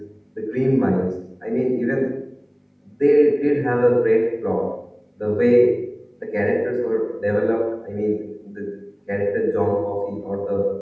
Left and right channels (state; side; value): identical; both; correlation 1.00